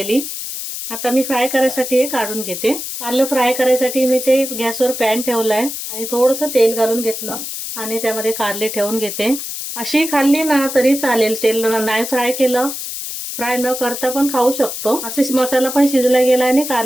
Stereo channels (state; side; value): noise; left; hiss, 7 dB below the sound